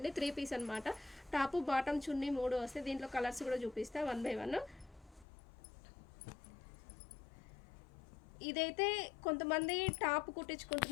3 పీస్ అనమాట. టాపు బాటమ్ చున్నీ 3 వస్తాయి. దీంట్లో కలర్స్ కూడా చూపిస్తా 1 బై 1. ఇదైతే కొంతమంది టాప్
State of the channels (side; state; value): right; drops out; at 5.2 s